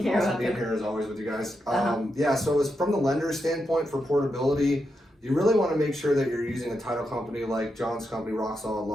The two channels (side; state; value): both; normal; correlation 0.85